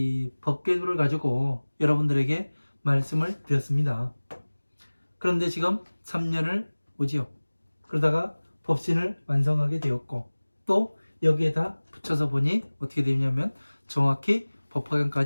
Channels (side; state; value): both; inverted; correlation -1.00